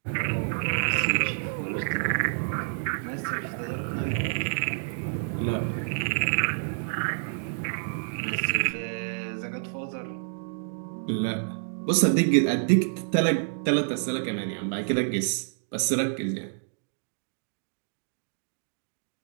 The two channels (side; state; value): left; silent; digital silence